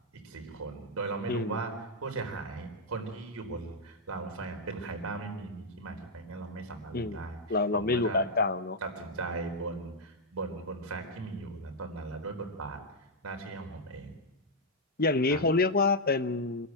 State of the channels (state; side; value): normal; both; correlation -0.02